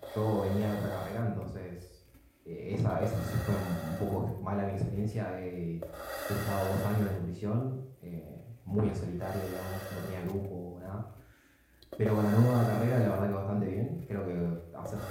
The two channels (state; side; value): identical; both; correlation 1.00